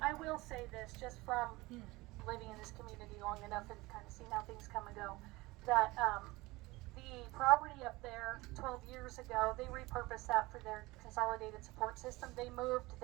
will say this, just from living in this community long enough and kind of seeing how things come and go, that the property up there 12 years ago, they repurposed that for their consolidated support system. They moved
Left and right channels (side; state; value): left; quieter; 21.2 dB